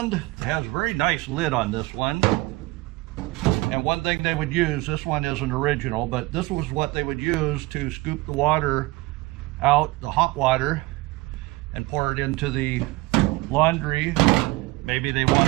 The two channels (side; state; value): left; quieter; 21.8 dB